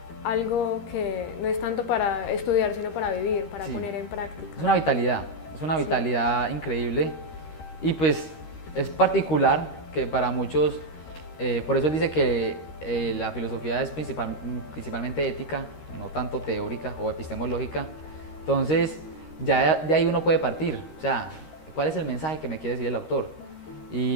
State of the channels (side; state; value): right; late; 13 ms